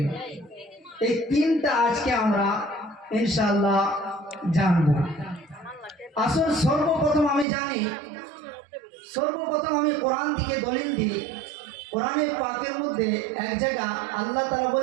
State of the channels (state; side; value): drops out; left; at 7.5 s